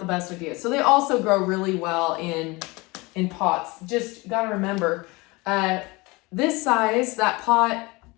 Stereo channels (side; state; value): right; quieter; 24.3 dB